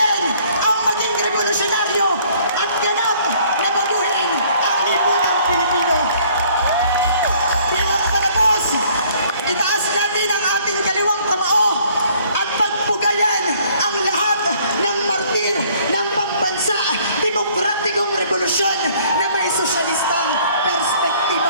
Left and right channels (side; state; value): both; inverted; correlation -0.59